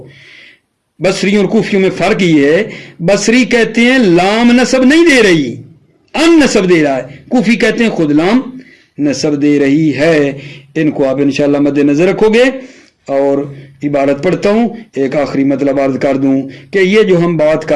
بصریوں اور کوفیوں میں فرق یہ ہے، بصری کہتے ہیں لام نسب نہیں دے رہی، ان نسب دے رہا ہے، کوفی کہتے ہیں خود لام نسب دے رہی ہے۔ ان کو آپ انشاءاللہ مد نظر رکھو گے۔ اور عبارت پڑھتا ہوں، ایک آخری مطلب عرض کر دوں کہ یہ جو ہم بات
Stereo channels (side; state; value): both; identical; correlation 1.00